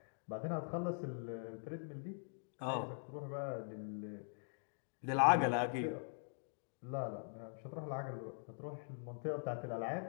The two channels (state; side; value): silent; right; digital silence